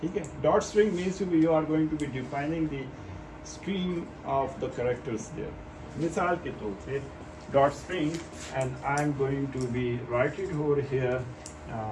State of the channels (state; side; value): identical; both; correlation 1.00